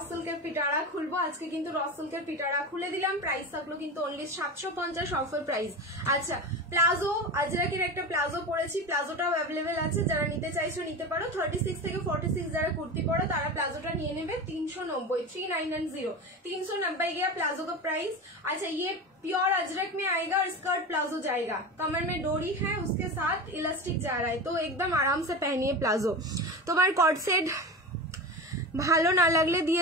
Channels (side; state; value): both; normal; correlation 0.26